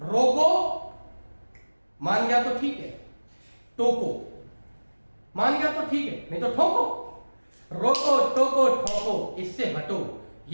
रोको, मान गया तो ठीक है, टोको, मान गया तो ठीक है, नहीं तो ठोको। रोको, टोको, ठोको, इससे हटो,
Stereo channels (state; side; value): inverted; both; correlation -1.00